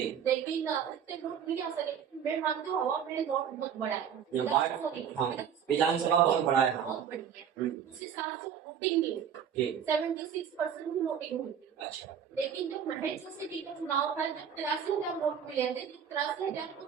लेकिन इतने वोट नहीं आ सके। मैं मानती हूँ हवा में वोट बहुत बड़ा है। ये हाँ, विधानसभा बहुत बड़ा है। हाँ। बहुत बड़ी है। उस हिसाब से वोटिंग नहीं जी। 76% की वोटिंग हुई थी। अच्छा। लेकिन जब महेश सिटी का चुनाव था जब 83,000 वोट मिले थे, जब 83,000 को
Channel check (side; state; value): left; quieter; 8.2 dB